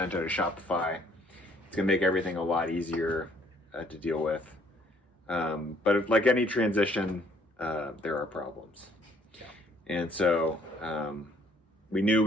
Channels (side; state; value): both; normal; correlation 0.62